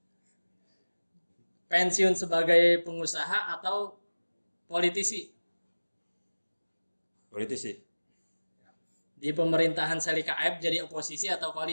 Pensiun sebagai pengusaha atau politisi? Politisi. Di pemerintahan Selika Aep jadi oposisi atau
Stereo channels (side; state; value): both; inverted; correlation -1.00